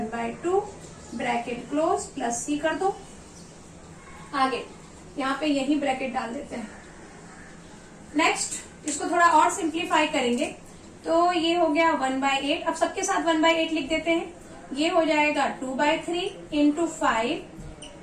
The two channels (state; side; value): identical; both; correlation 1.00